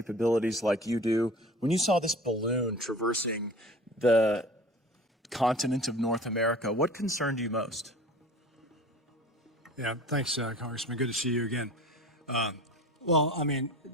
like you do. When you saw this balloon traversing the continent of North America, what concerned you most? Yeah, thanks, Congressman. Good to see you again. Well, I mean,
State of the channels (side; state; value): both; normal; correlation 0.41